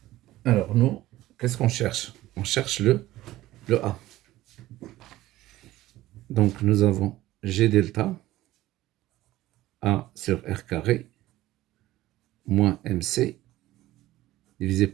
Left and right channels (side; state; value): left; quieter; 16.0 dB